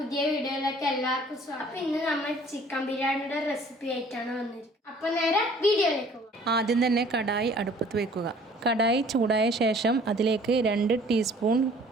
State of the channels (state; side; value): normal; both; correlation 0.54